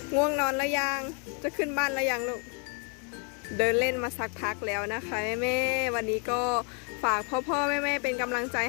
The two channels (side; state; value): right; quieter; 38.9 dB